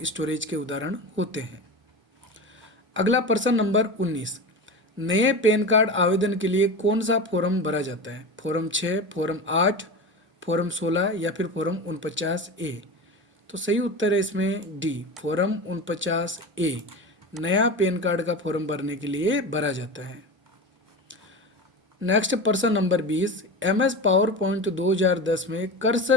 स्टोरेज के उदाहरण होते हैं। अगला प्रश्न नंबर 19, नए पैन कार्ड आवेदन के लिए कौन सा फॉर्म भरा जाता है? फॉर्म 6, फॉर्म 8, फॉर्म 16 या फिर फॉर्म 49A? तो सही उत्तर है इसमें डी, फॉर्म 49A नया पैन कार्ड का फॉर्म भरने के लिए भरा जाता है। नेक्स्ट प्रश्न नंबर 20, MS पावर पॉइंट 2010 में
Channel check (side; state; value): both; normal; correlation 0.26